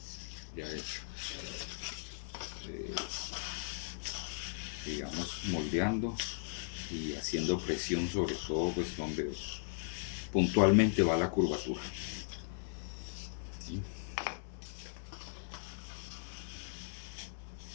ya hecho, digamos moldeando y haciendo presión sobre todo pues donde puntualmente va la curvatura, ¿sí?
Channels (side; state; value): right; silent; digital silence